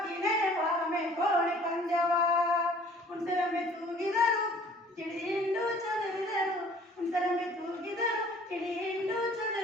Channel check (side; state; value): both; normal; correlation 0.53